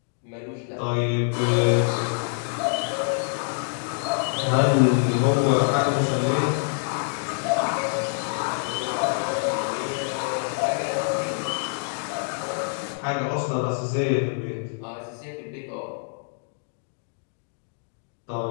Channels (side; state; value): right; silent; 61 dB below the other